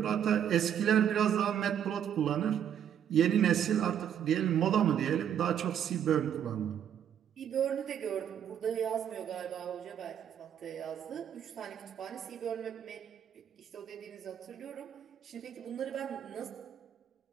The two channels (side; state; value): left; quieter; 9.3 dB